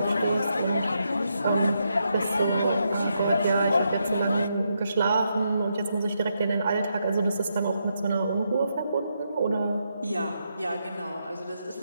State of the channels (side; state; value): both; inverted; correlation -0.81